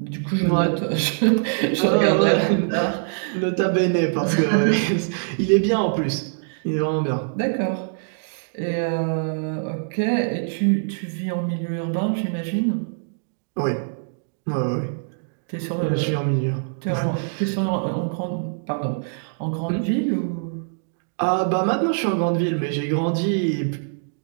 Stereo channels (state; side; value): silent; left; digital silence